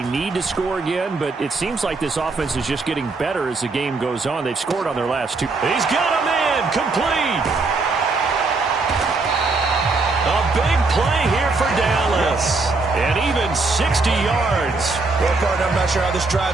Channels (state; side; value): quieter; left; 3.7 dB